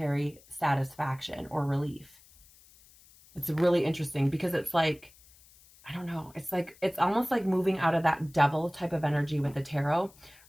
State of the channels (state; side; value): noise; left; hiss, 26 dB below the sound